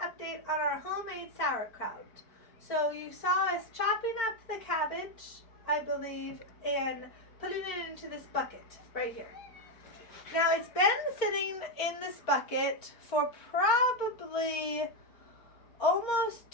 update on our homemade sauerkraut. So you saw us chopping up the cabbage, I believe, and putting it into this bucket right here. Now it's been sitting in this bucket for probably almost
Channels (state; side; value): late; right; 4.3 ms